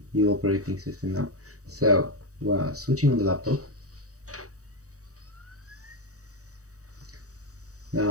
new operating system now. So we're switching on the laptop.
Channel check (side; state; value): left; late; 0.66 ms